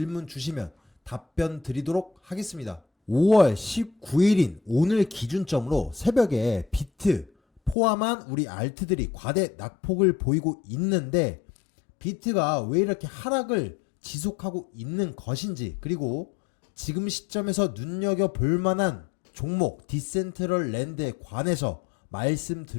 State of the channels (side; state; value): right; drops out; at 7.8 s